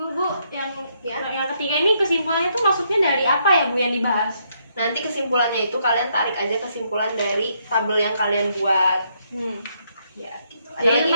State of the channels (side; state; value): both; inverted; correlation -0.74